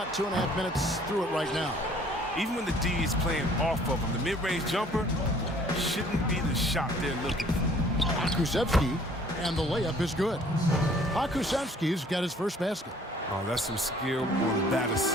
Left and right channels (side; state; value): both; normal; correlation 0.56